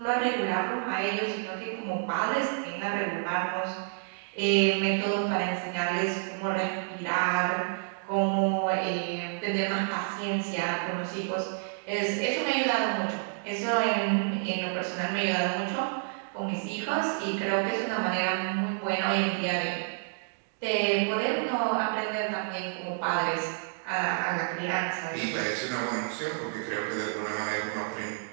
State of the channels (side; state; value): left; silent; digital silence